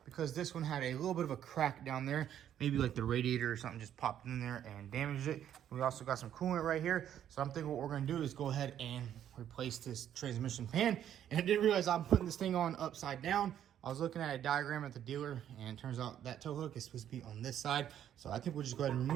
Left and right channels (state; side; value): quieter; left; 10.3 dB